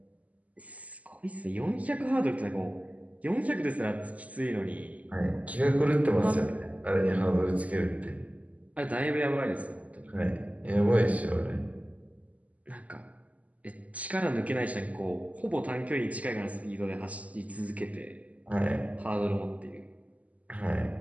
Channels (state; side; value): late; left; 0.073 ms